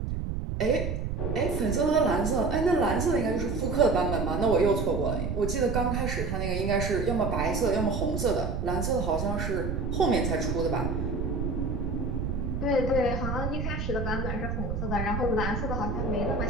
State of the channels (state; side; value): noise; right; rumble, 2 dB below the sound